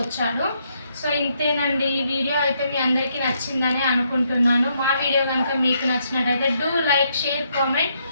సో ఇంతేనండి. ఈ వీడియో అయితే మీ అందరికీ నచ్చిందని అనుకుంటున్నాను. మా వీడియో కనుక మీకు నచ్చినట్టయితే డూ లైక్, షేర్, కామెంట్.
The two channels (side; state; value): both; inverted; correlation -0.75